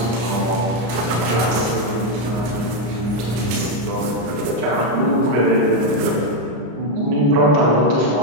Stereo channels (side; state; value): left; late; 33 ms